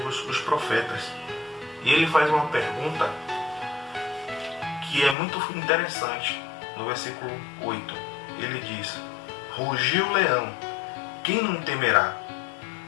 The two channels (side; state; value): right; drops out; at 5.2 s